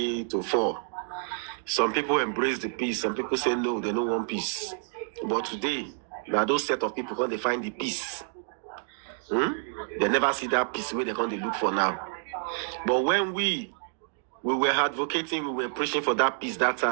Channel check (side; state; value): left; silent; 59 dB below the other